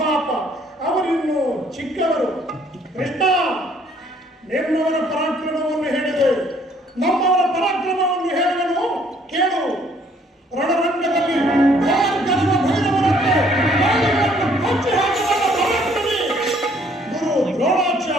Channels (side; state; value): both; normal; correlation 0.62